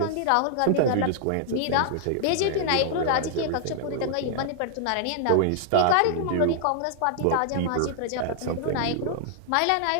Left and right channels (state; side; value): different; both; correlation -0.01